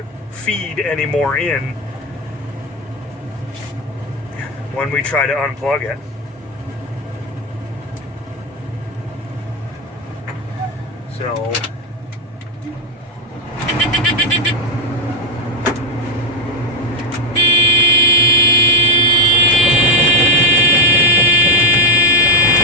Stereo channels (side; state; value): both; normal; correlation 0.08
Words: feed any more in when we try to unplug it. So